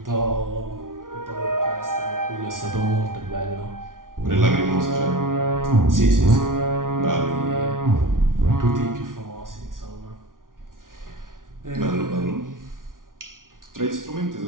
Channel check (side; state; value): left; late; 0.89 ms